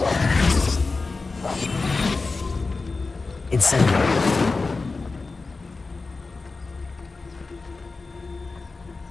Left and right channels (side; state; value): right; quieter; 3.9 dB